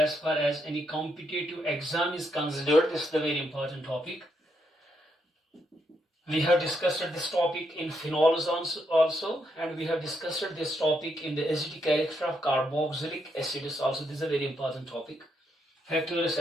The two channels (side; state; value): both; normal; correlation 0.78